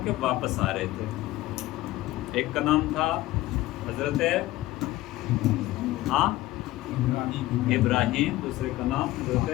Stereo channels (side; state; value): right; quieter; 17.0 dB